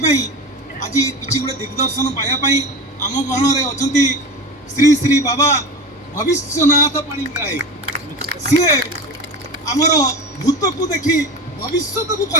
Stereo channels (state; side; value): normal; both; correlation 0.28